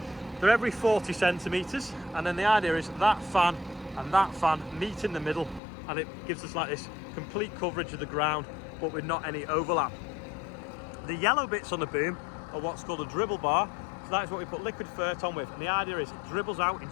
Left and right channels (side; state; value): right; drops out; at 5.6 s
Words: They're every 40 centimeters, and then the idea is that fan and that fan meet in the middle, and it gives us like this complete coverage of the ground, but with not any overlap. The yellow bits on the boom are what's called a dribble bar. So that is what we put liquid fert on with, and the idea is it dribbles out in